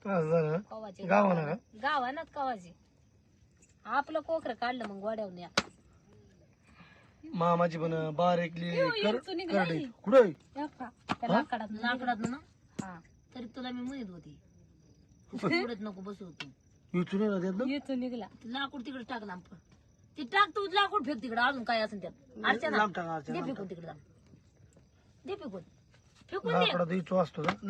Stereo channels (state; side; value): identical; both; correlation 1.00